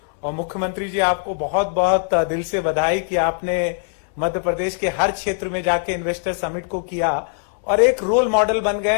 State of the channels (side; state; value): right; silent; 61 dB below the other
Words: और मुख्यमंत्री जी, आपको बहुत बहुत दिल से बधाई कि आपने मध्य प्रदेश के हर क्षेत्र में जाके इन्वेस्टर समिट को किया और एक रोल मॉडल बन गए